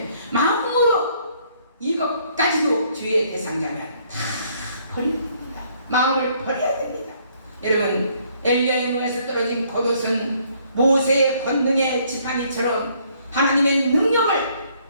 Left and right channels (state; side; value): inverted; both; correlation -0.65